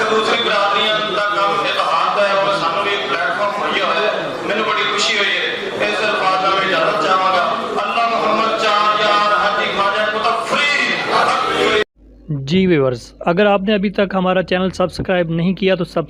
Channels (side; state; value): both; identical; correlation 1.00